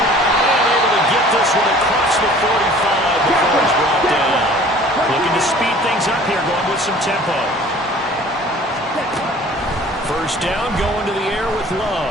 able to get this one across the 45 before he's brought down. Looking to speed things up here, going with some tempo. First down, going to the air with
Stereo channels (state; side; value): normal; both; correlation 0.49